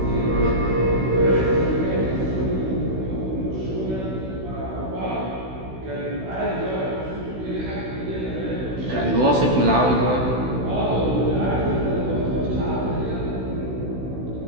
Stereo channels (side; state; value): left; late; 16 ms